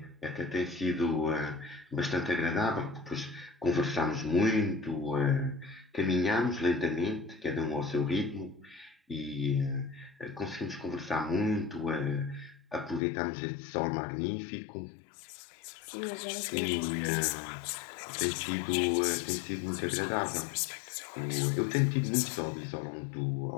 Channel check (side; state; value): right; drops out; at 13.0 s